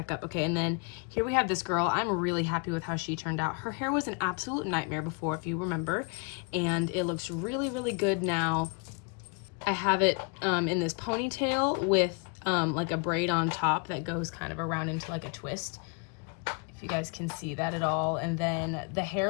up. Okay, and then here we have this girl. I'm really happy with how she turned out. Her hair was an absolute nightmare before, if you remember, and it looks really good now. I have it in this ponytail with like a braid on top that goes kind of around into like a twist, if you guys can see that at all. And then the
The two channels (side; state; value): right; quieter; 35.7 dB